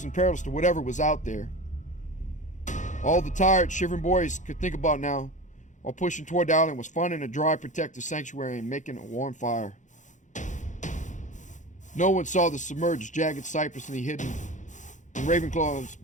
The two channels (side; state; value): right; late; 0.36 ms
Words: and perilous to whatever was out there. All the tired, shivering boys could think about now, while pushing toward the island, was finding a dry, protected sanctuary and making a warm fire. No one saw the submerged, jagged cypress in the hidden, and Ravenclaw's